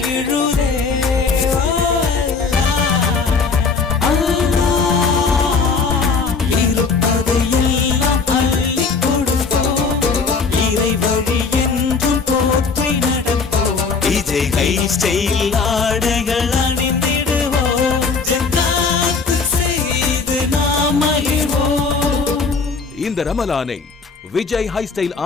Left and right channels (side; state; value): right; quieter; 4.8 dB